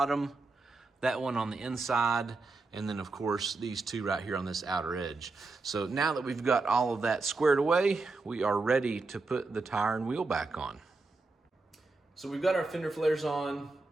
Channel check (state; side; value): quieter; left; 3.6 dB